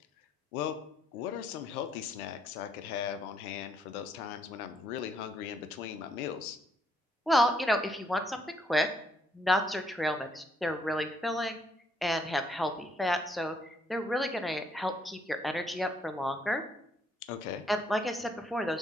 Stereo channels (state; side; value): normal; both; correlation 0.71